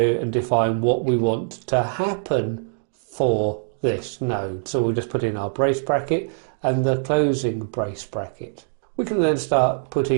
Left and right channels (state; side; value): silent; left; digital silence